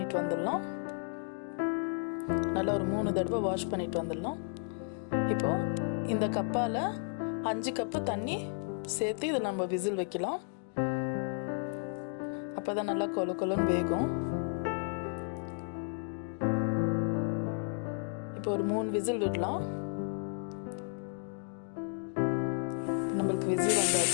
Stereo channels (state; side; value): silent; right; 56 dB below the other